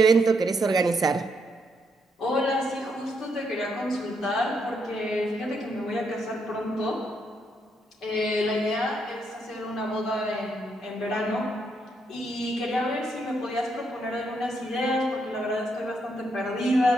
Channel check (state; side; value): normal; both; correlation 0.77